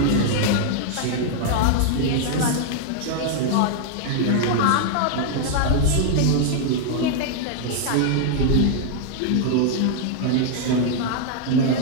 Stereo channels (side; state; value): both; different; correlation 0.00